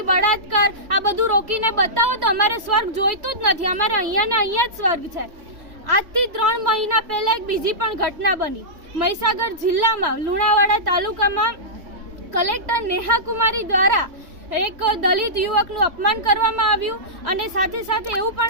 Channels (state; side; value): late; left; 3.3 ms